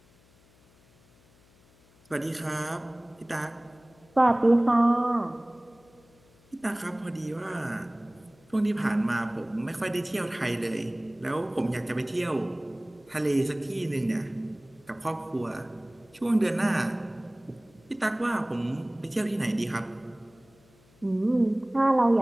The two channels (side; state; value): left; noise; hum, 30 dB below the sound